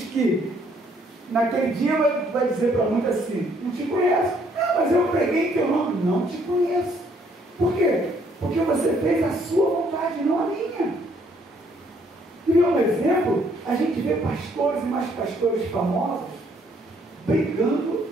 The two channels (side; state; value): both; normal; correlation 0.66